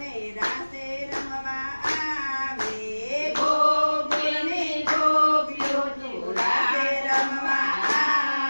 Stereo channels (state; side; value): inverted; both; correlation -1.00